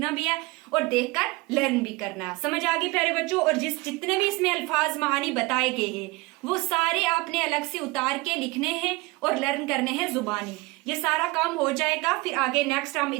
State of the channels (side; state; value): left; quieter; 23.3 dB